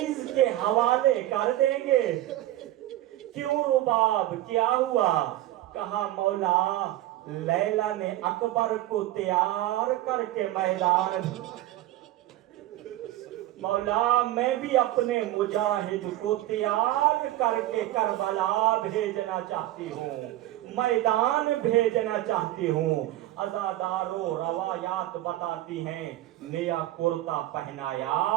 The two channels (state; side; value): quieter; left; 15.0 dB